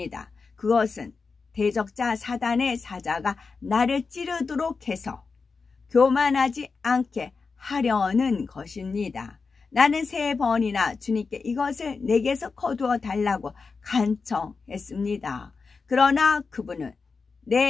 그것은 대적자 사단의 사자가 나를 찌르도록 해서 교만하지 않게 하려는 것입니다. 나는 3번이나 주님께 이것을 내게서 거두어 달라고 간청했습니다. 그러나 그분은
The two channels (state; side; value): quieter; right; 4.7 dB